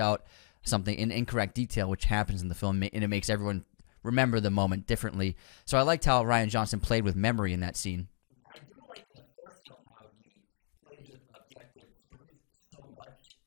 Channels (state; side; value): silent; right; digital silence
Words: something in incorrect detail, which happens in the film, and it makes everyone remember the moment differently. So I liked how Rian Johnson played with memory in that scene. I do like in the first film how he plays with objective truth so much